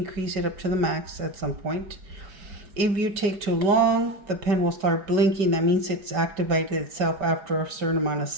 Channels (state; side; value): late; left; 5.2 ms